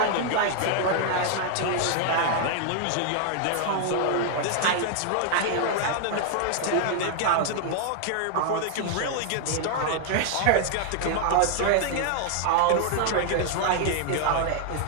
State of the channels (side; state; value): both; different; correlation 0.00